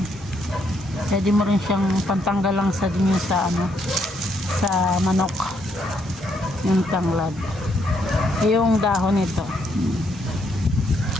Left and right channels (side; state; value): both; normal; correlation 0.74